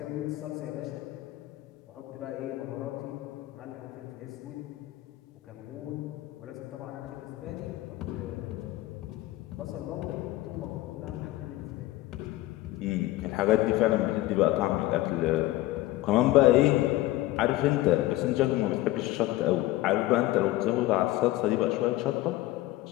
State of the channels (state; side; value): quieter; right; 17.1 dB